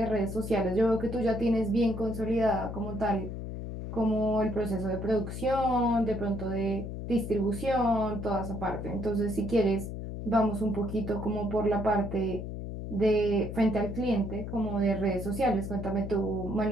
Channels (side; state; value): left; noise; hum, 7 dB below the sound